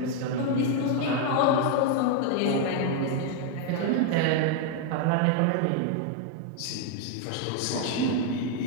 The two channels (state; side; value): different; both; correlation 0.00